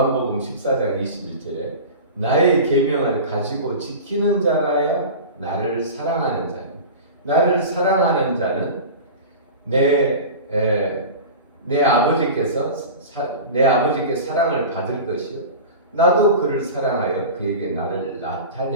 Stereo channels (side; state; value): both; inverted; correlation -0.32